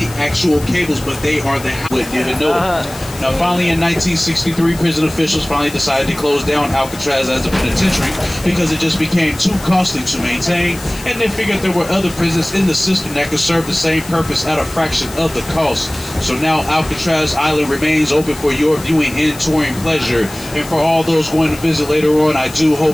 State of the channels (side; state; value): left; noise; hiss, 16 dB below the sound